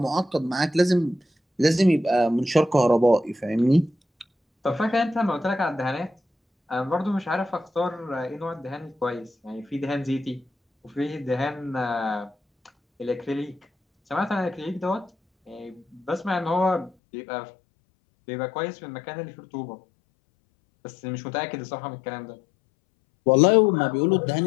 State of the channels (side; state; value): right; drops out; at 16.9 s